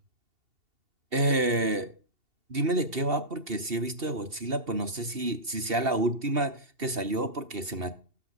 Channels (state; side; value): late; left; 2.7 ms